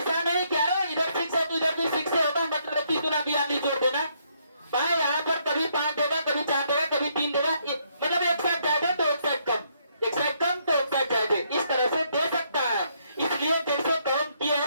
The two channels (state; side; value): inverted; both; correlation -0.72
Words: नहीं कह रहा इधर 6 है तो इधर भी 6 से होगा, मतलब 21 गुना 42 जोड़ देना। भाई यहाँ पर कभी 5 देगा, कभी 4 देगा, कभी 3 देगा, मतलब एक साइड ज्यादा तो एक साइड कम, एक साइड कम तो एक साइड ज्यादा, इस तरह से दे सकता है। इसलिए जैसे काउंट किए